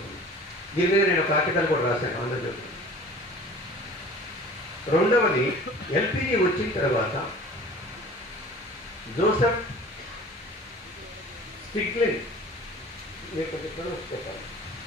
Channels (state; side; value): normal; both; correlation 0.44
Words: దీని మీద నేను ఒక ఆర్టికల్ కూడా రాశాను ఆంధ్రజ్యోతి. రెండవది, ఎల్పిజి వచ్చిన తర్వాత జోసెఫ్ స్టిగ్లిన్ చెప్పాలి,